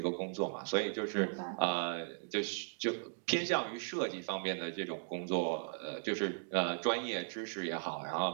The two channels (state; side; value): silent; left; digital silence